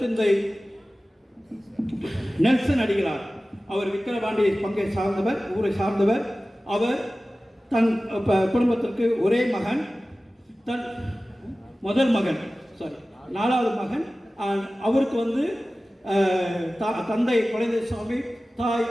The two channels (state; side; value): normal; both; correlation 0.96